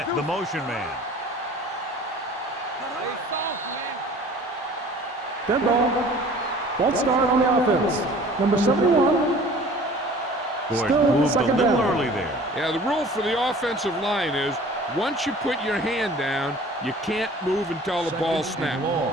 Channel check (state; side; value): normal; both; correlation 0.47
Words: the motion man. Dead ball. False start on the offense. Number 71. Gordon Still moved a second little down. early there. Yeah, the rule for the offensive line is once you put your hand down, you can't move until the ball snaps.